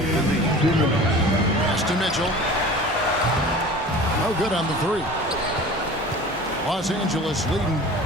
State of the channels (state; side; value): normal; both; correlation 0.40